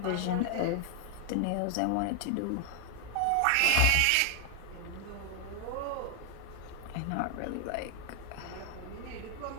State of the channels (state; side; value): different; both; correlation 0.00